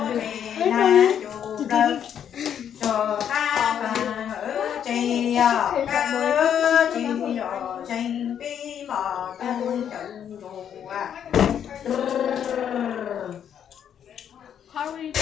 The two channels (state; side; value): quieter; right; 9.0 dB